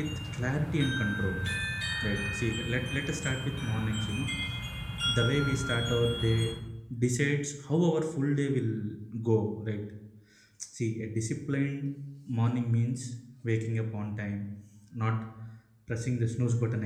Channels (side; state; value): both; identical; correlation 1.00